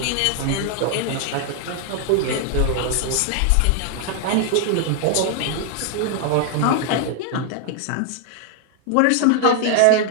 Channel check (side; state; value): both; different; correlation 0.00